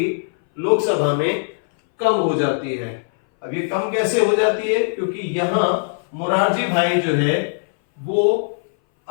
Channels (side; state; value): right; silent; 60 dB below the other